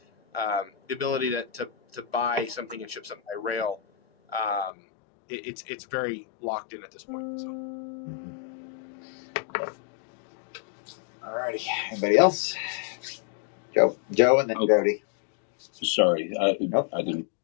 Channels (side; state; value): right; drops out; at 4.7 s